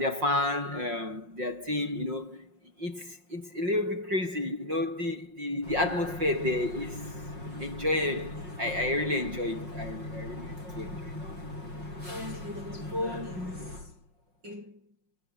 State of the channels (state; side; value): late; left; 5.5 ms